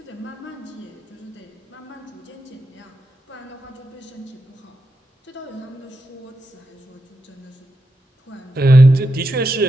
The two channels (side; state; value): both; normal; correlation 0.86